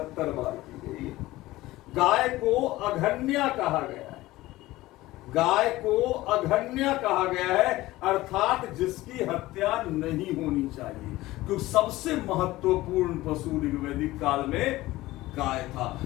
बार की गई। गाय को अघन्या कहा गया है। गाय को अघन्या कहा गया है, अर्थात जिसकी हत्या नहीं होनी चाहिए, क्योंकि सबसे महत्वपूर्ण पशु ऋग्वैदिक काल में गाय था।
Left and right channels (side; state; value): right; quieter; 17.8 dB